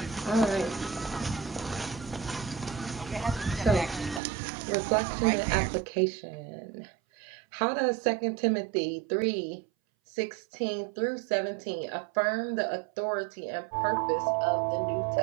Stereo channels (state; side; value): drops out; left; at 4.2 s